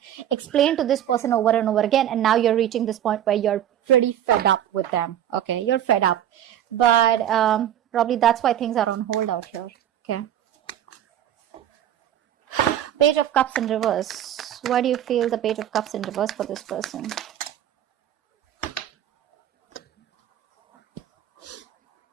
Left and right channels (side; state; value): left; quieter; 10.9 dB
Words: explained to this person over and over again, and now you're reaching this point where you're pretty fed up with them, okay? You're fed up. But probably that's why things are on hold out here, okay? Page of Cups in reverse. Why do you feel the Page of Cups in reverse for this person?